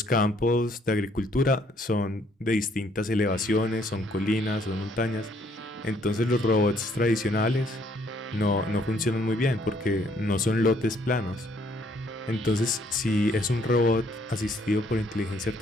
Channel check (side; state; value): both; normal; correlation 0.66